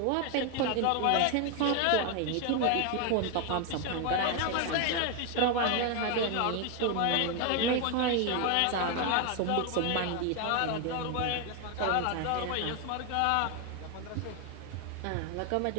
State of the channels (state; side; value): different; both; correlation 0.01